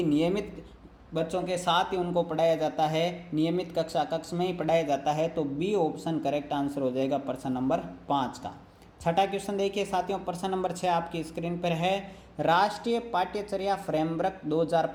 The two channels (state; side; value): identical; both; correlation 1.00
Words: नियमित बच्चों के साथ ही उनको पढ़ाया जाता है, नियमित कक्षा कक्ष में ही पढ़ाया जाता है। तो बी ऑप्शन करेक्ट आंसर हो जाएगा प्रश्न नंबर 5 का। छठा क्वेश्चन देखिए साथियों, प्रश्न नंबर 6 आपकी स्क्रीन पर है। राष्ट्रीय पाठ्यचर्या फ्रेमवर्क